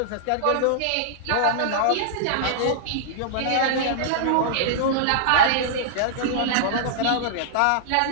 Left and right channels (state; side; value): different; both; correlation -0.01